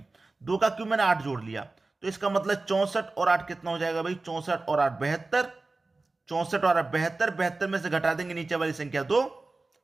2 का क्यूब मैंने 8 जोड़ लिया, तो इसका मतलब 64 और 8 कितना हो जाएगा भाई? 64 और 8 72। 64 और 8 72। 72 में से घटा देंगे नीचे वाली संख्या 2,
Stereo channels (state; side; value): quieter; left; 3.4 dB